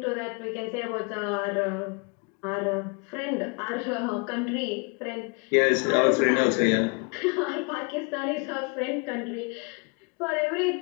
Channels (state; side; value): quieter; right; 33.2 dB